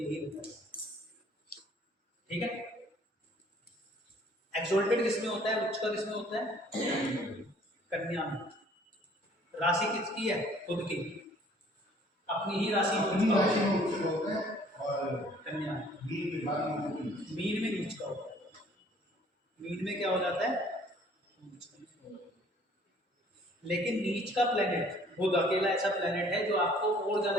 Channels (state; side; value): normal; both; correlation 0.57